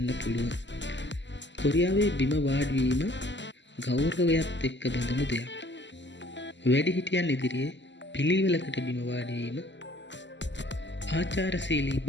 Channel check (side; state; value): right; late; 0.53 ms